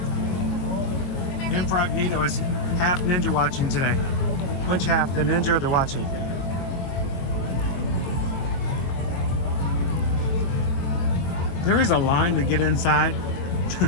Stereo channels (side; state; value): right; late; 22 ms